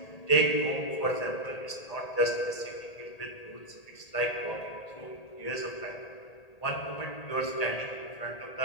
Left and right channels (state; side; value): late; right; 1.8 ms